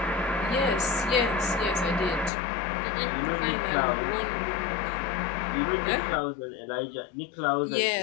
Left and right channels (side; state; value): right; drops out; at 2.3 s